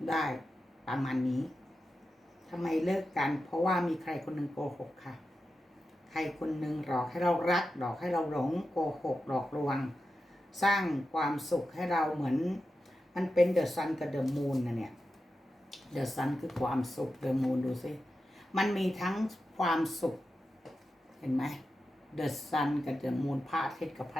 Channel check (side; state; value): both; normal; correlation 0.91